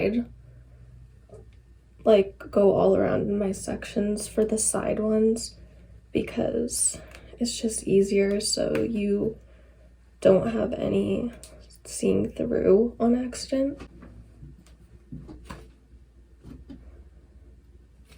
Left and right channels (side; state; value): both; identical; correlation 1.00